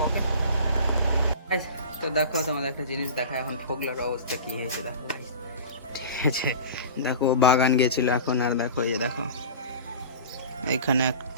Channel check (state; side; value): inverted; both; correlation -0.35